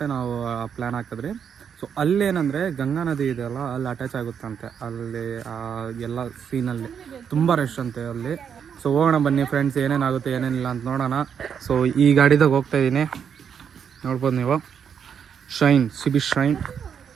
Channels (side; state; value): left; quieter; 7.6 dB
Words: ನಾವು ಪ್ಲ್ಯಾನ್ ಹಾಕಿದ್ರಿ. ಸೊ ಅಲ್ಲೇನಂದರೆ ಗಂಗಾ ನದಿ ಇದೆಯಲ್ಲ, ಅಲ್ಲಿ ಅಟ್ಯಾಚ್ ಆಗುತ್ತಂತೆ. ಅಲ್ಲಿ ಎಲ್ಲ ಸೀನಲ್ಲಿ ತುಂಬ ರಶ್ ಅಂತೆ ಅಲ್ಲಿ. ಸೊ ಹೋಗೋಣ ಬನ್ನಿ ಫ್ರೆಂಡ್ಸ್, ಏನೇನಾಗುತ್ತೆ ಏನೇನಿಲ್ಲ ಅಂತ ನೋಡೋಣ. ಸೊ ಈ ಗಾಡಿದಾಗ ಹೋಗ್ತಾ ಇದ್ದೀನಿ, ನೋಡ್ಬೋದು ನೀವು, ಶೈನ್ ಸಿಬಿ ಶೈನ್.